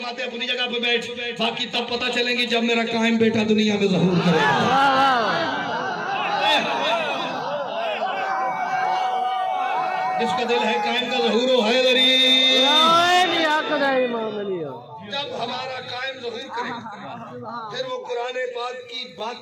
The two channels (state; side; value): identical; both; correlation 1.00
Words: اپنی جگہ پہ بیٹھ, باقی تب پتہ چلیں گی جب میرا قائم بیٹا دنیا میں ظہور کرے گا. جس کا دل ہے قائم کا ظہور ہو حیدری. جب ہمارا قائم ظہور کرے پھر وہ قرآن پاک کی